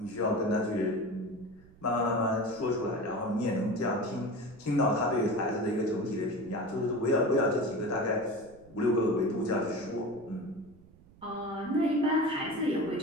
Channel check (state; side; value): noise; right; rumble, 25 dB below the sound